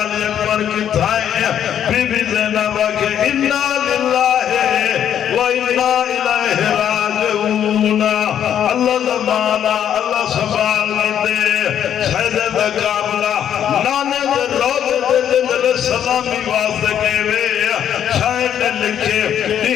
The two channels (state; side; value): quieter; right; 9.6 dB